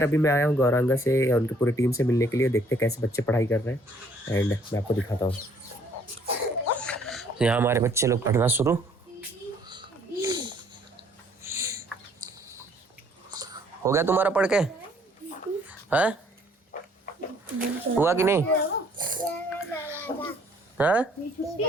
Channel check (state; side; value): normal; both; correlation 0.62